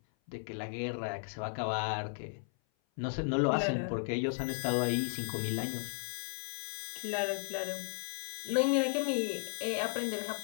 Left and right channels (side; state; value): right; silent; 54 dB below the other